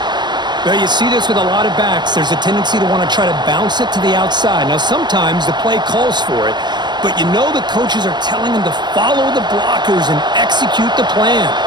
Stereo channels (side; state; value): left; late; 0.21 ms